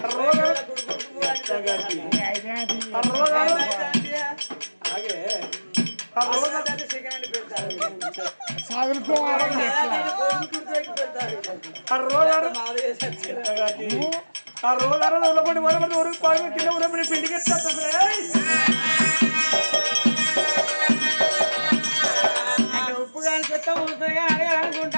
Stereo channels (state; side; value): inverted; both; correlation -1.00